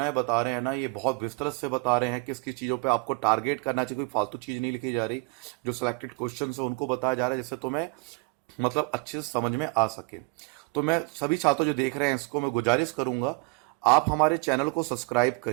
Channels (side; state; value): left; quieter; 29.7 dB